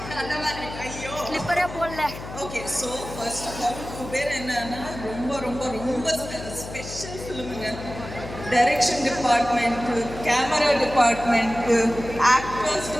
அந்த மாதிரி. ஐயோ. ஸ்லிப்பரே போடல. Okay, so first of all Kubera என்னன்னா ரொம்ப ரொம்ப ரொம்ப ஸ்பெஷல் ஃபிலிமுங்க. Direction department, camera department, actors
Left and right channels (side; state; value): left; noise; hum, 11 dB below the sound